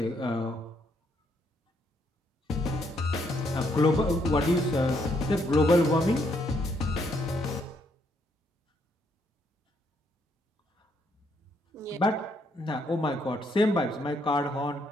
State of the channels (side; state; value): both; normal; correlation 0.73